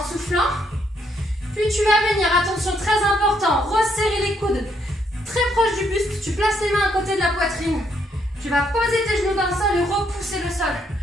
soufflant. Puis tu vas venir, attention, très important, resserrer les coudes très proche du buste. Tu places les mains à côté de la poitrine. Tu vas poser tes genoux dans le sol et repousser le sol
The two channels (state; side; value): normal; both; correlation 0.73